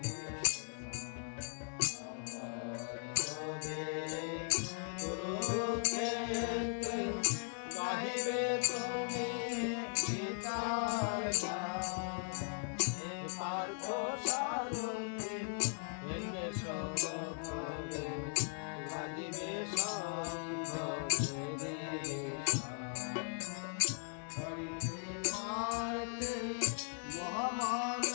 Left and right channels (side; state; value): right; silent; 52 dB below the other